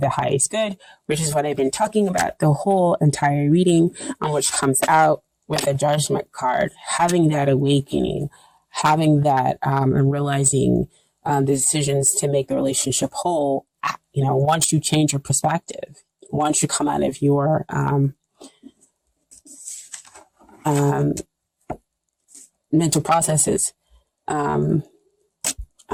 the highest good, which is what I've been talking about the whole entire reading, on which comes out with a judgment card, having that awakening, having that and realizing the decisions to make the relationship whole. You know, once you change your perspective, once you come out of your mental processes,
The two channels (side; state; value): both; identical; correlation 1.00